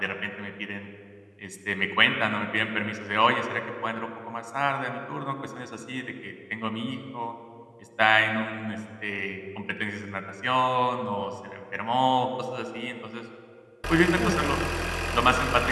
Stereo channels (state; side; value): identical; both; correlation 1.00